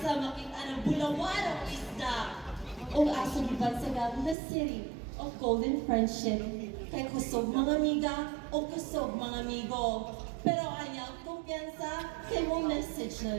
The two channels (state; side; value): drops out; left; at 4.4 s